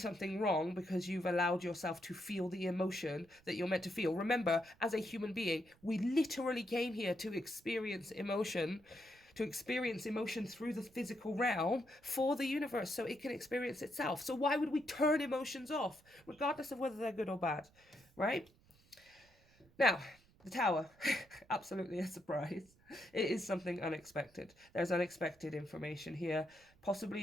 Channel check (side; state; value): right; noise; rumble, 29 dB below the sound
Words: wrong because you've allowed yourself to feel the emotion that you're meant to feel. Remember, as a human being, we literally came here to experience emotion, through the physical realm for the universe so it can experience itself. So why would we turn emotions off, regardless of whether they're good or bad, right? Now, the Tower, absolutely a surprise. It is something unexpected. There's unexpected information here,